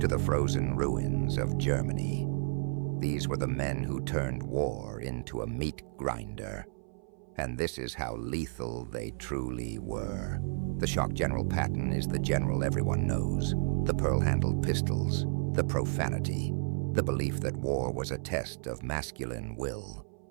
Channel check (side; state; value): left; silent; 56 dB below the other